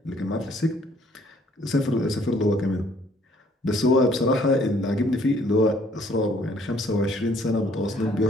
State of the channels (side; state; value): both; normal; correlation 0.62